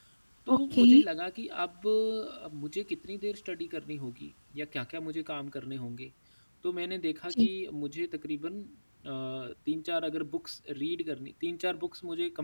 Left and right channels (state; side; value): inverted; both; correlation -1.00